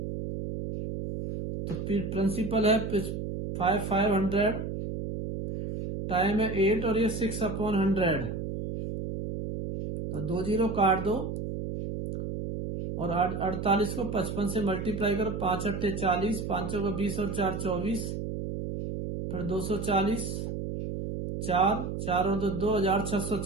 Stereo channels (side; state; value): right; noise; hum, 5 dB below the sound